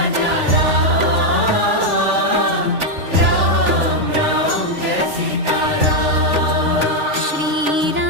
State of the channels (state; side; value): late; left; 3.4 ms